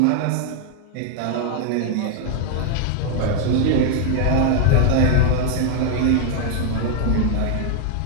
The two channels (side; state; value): both; different; correlation 0.00